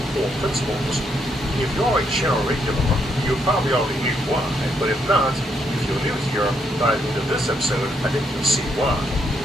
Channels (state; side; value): normal; both; correlation 0.75